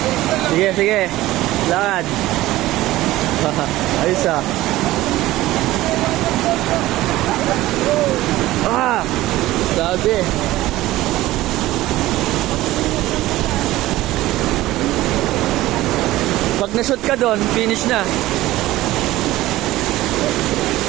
Sige, sige. Lakad. Ayos ah. Ah! Grabe. Pag na-shoot ka doon, finish na.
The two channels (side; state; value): left; quieter; 16.7 dB